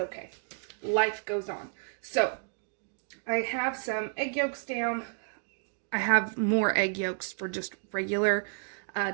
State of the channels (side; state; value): left; silent; digital silence